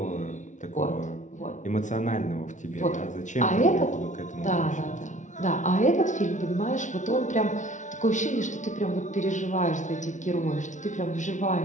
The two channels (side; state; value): right; late; 0.36 ms